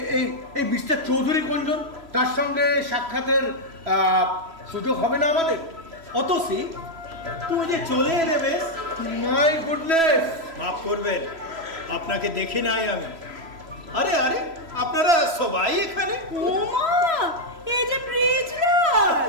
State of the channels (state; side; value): late; left; 3.0 ms